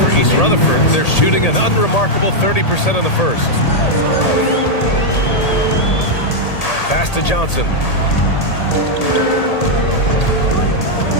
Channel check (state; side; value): late; right; 1.8 ms